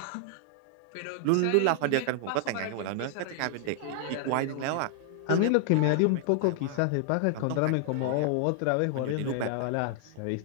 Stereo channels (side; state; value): both; different; correlation 0.00